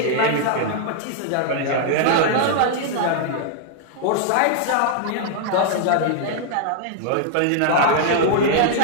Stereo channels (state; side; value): different; both; correlation 0.00